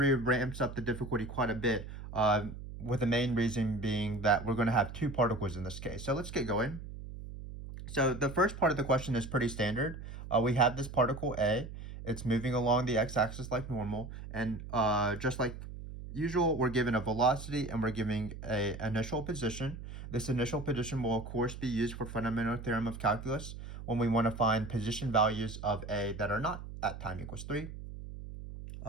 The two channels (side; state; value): right; noise; hum, 11 dB below the sound